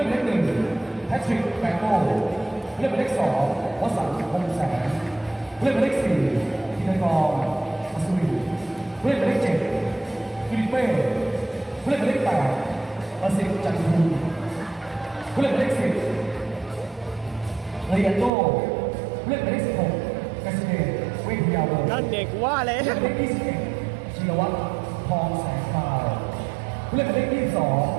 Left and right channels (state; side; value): drops out; left; at 18.3 s